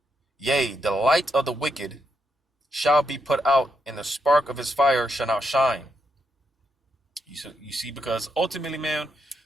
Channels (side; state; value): both; normal; correlation 0.81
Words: Yea, the light of the wicked shall be put out, and the spark of his fire shall not shine. You see, because ultimately, man,